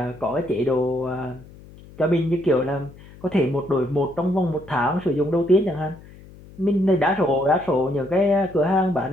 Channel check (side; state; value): left; noise; hum, 21 dB below the sound